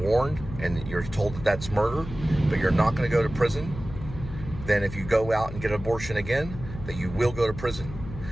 and you're told that that's murder, but you're not going to go to prison. Then if you go out and get an abortion again, that you will go to prison.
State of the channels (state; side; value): noise; left; hum, 11 dB below the sound